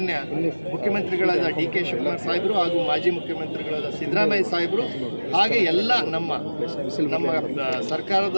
ಮುಖ್ಯಮಂತ್ರಿಗಳಾದ ಡಿ.ಕೆ. ಶಿವಕುಮಾರ್ ಸಾಹೇಬರು ಹಾಗೂ ಮಾಜಿ ಮುಖ್ಯಮಂತ್ರಿಗಳಾದ ಸಿದ್ದರಾಮಯ್ಯ ಸಾಹೇಬರು ಹಾಗೆ ಎಲ್ಲ ನಮ್ಮ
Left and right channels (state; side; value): inverted; both; correlation -1.00